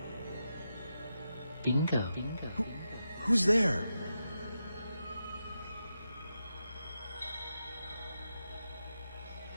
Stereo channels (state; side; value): inverted; both; correlation -0.88